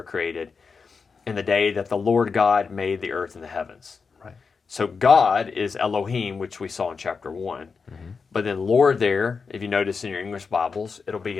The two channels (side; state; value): right; quieter; 5.2 dB